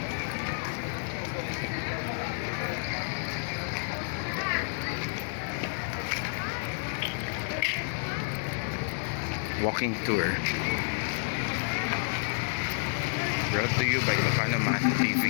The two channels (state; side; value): silent; right; digital silence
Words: Walking tour. Brought to you by Ilocano Math